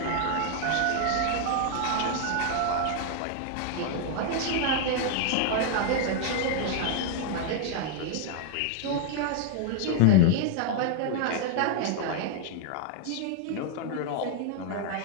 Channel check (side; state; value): both; different; correlation 0.00